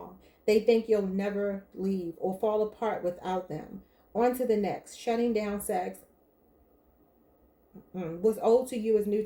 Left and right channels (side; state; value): both; identical; correlation 1.00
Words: They think you'll never leave or fall apart without them. On to the next. Shutting down sex. What's old to you is new